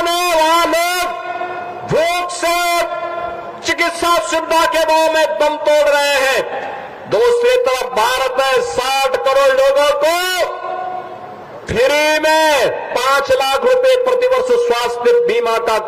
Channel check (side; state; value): both; identical; correlation 1.00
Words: है, वहां लोग भूख से चिकित्सा सुविधा के भाव में दम तोड़ रहे हैं। दूसरी तरफ भारत है, 60 करोड़ लोगों को फ्री में 5 लाख रुपए प्रतिवर्ष स्वास्थ्य बीमा का